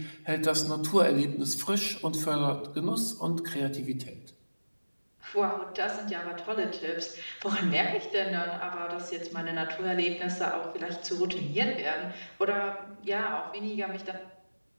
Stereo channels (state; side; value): inverted; both; correlation -1.00